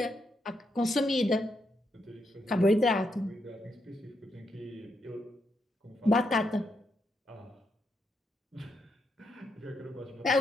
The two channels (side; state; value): both; normal; correlation 0.80